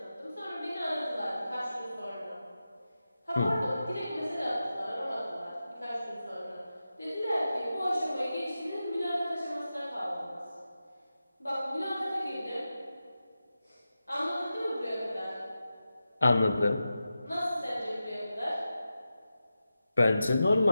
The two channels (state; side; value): inverted; both; correlation -0.92